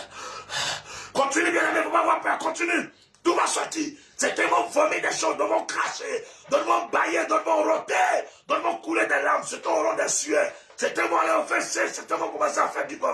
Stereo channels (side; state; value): both; identical; correlation 1.00